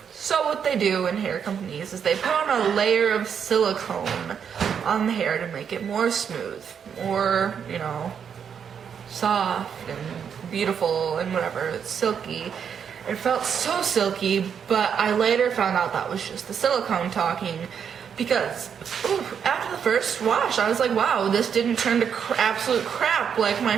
So what they do in hair companies is they put on a layer of silicone on the hair to make it more smooth, more, soft and beautiful and whatever. It's silky. It felt so silky, but I later found out that was just the silicone talking, because after the first wash, I was like, wow, this didn't turn to absolute crap like my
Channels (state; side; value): quieter; left; 7.5 dB